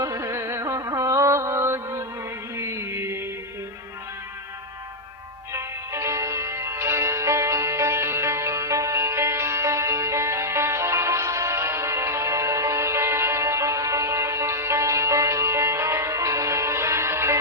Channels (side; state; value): both; normal; correlation -0.05